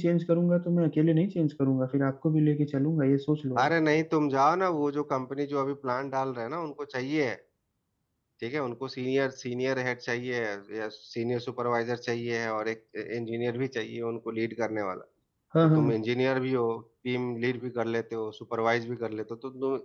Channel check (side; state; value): both; identical; correlation 1.00